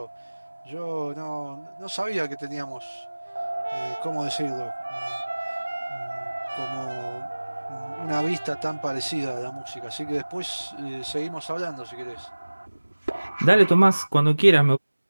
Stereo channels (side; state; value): both; inverted; correlation -1.00